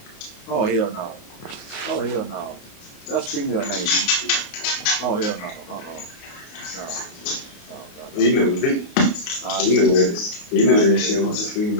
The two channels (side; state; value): right; late; 29 ms